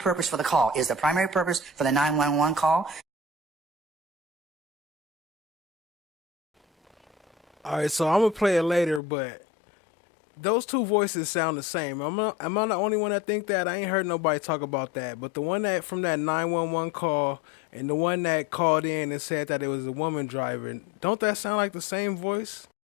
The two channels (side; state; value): right; drops out; at 9.0 s